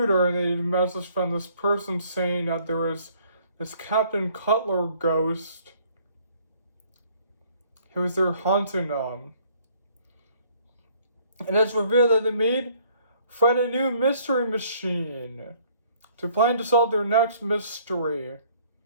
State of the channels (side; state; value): both; inverted; correlation -0.60